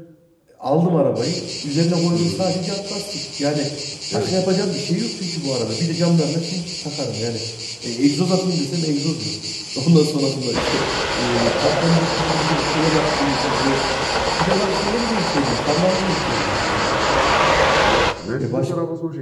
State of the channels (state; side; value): identical; both; correlation 1.00